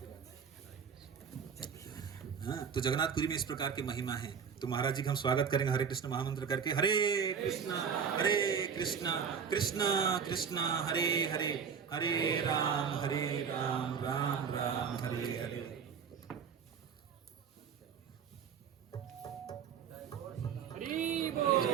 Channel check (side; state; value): left; quieter; 6.7 dB